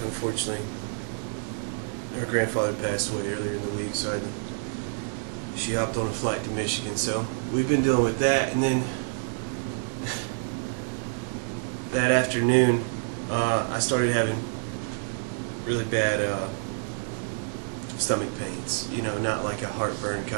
unfortunately, her grandfather passed away earlier in the week, so she hopped on a flight to Michigan. So we've been dealing with that, and then that afternoon, I started having really bad stomach pains. You know, not like a heartburn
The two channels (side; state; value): left; silent; 59 dB below the other